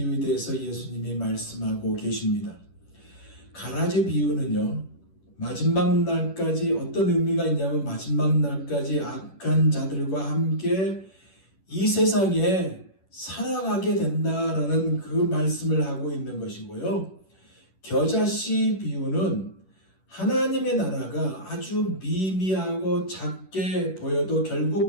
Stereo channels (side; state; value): right; late; 10 ms